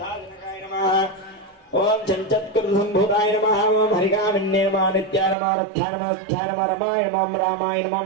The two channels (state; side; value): drops out; left; at 5.4 s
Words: नमः ओम चञ्चत्कृतसम्भूताय नमः ओम हरिकामिन्ये नमः नित्याय नमः रथ्याय नमः रथ्याय नमः रमाय नमः रामाय नमः